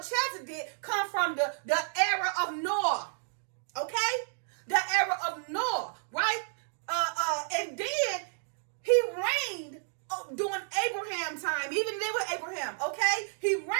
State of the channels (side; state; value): left; silent; digital silence